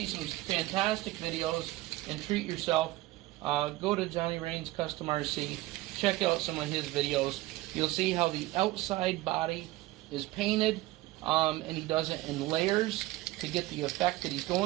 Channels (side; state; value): left; quieter; 18.3 dB